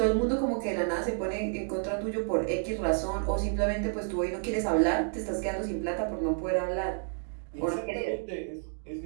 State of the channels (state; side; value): silent; left; 58 dB below the other